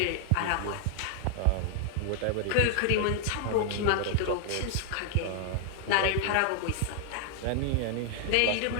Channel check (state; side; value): different; both; correlation 0.00